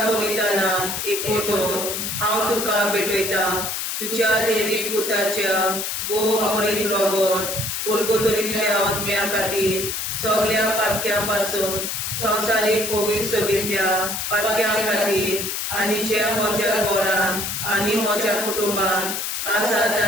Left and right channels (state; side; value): noise; left; hiss, 3 dB below the sound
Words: एकवटून हांव तुका भेटयता. तुज्या दैवीक पुताच्या मोडीक रगत उरगतुरींतल्या आत्म्या खातीर सगळ्या पातक्यां पासून संवसारीक पवित्रतेंतल्या पातक्यां खातीर आनी जे म्हज्या घरांत आनी म्हज्या कुटुंबांत आसा